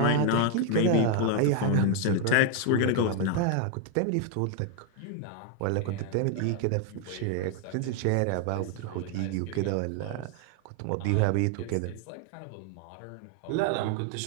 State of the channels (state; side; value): different; both; correlation 0.01